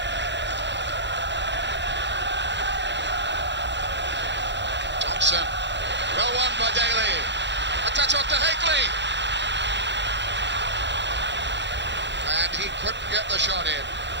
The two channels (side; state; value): left; late; 0.52 ms